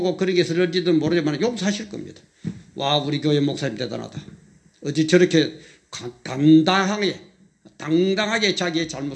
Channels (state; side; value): identical; both; correlation 1.00